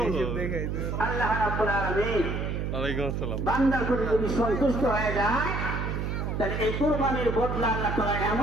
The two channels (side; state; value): right; noise; hum, 2 dB below the sound